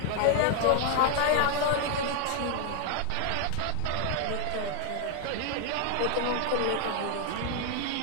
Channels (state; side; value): different; both; correlation 0.00